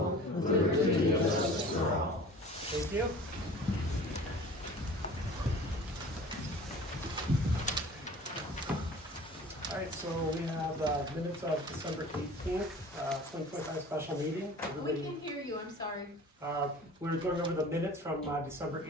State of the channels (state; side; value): normal; both; correlation 0.43